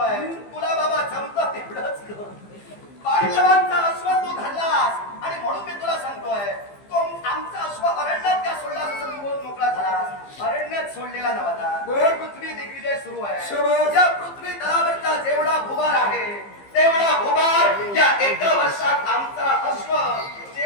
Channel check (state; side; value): late; right; 15 ms